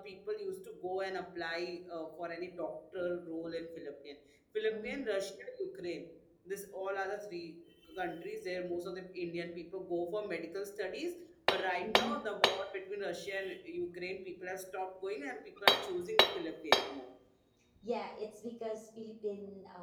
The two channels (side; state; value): both; identical; correlation 1.00